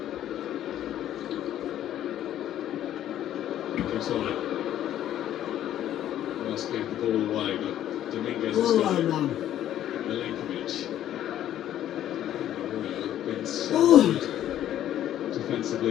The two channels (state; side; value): quieter; right; 11.7 dB